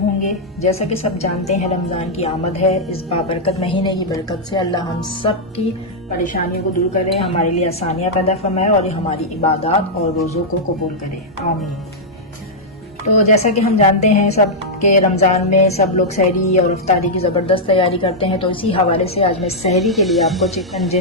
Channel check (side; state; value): both; normal; correlation -0.06